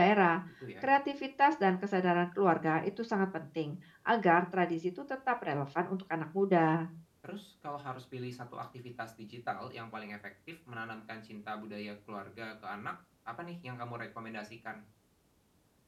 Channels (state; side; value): identical; both; correlation 1.00